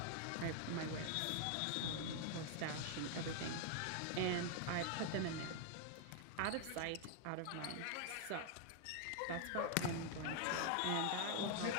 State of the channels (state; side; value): different; both; correlation 0.00